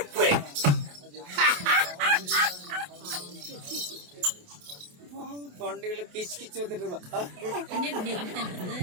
தொண்டையில கிச்சு கிச்சு வந்துட்டு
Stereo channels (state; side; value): late; left; 28 ms